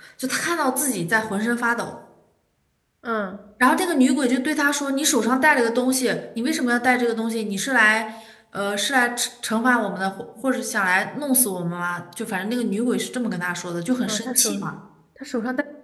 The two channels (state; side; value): identical; both; correlation 1.00